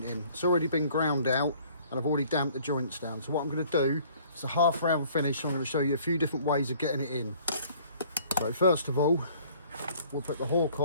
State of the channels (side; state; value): both; inverted; correlation -0.55